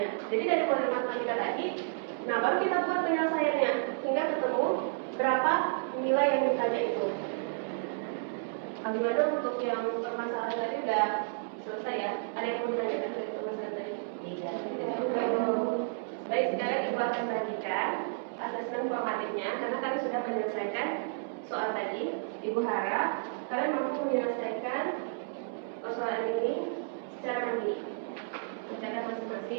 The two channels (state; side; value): silent; left; digital silence